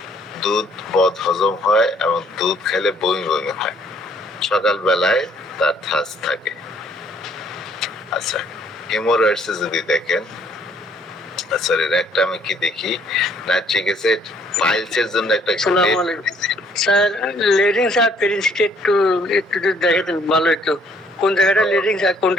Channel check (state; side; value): normal; both; correlation 0.63